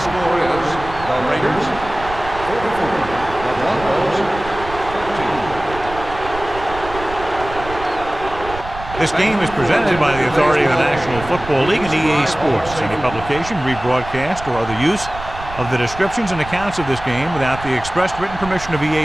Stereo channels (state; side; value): noise; right; rumble, 13 dB below the sound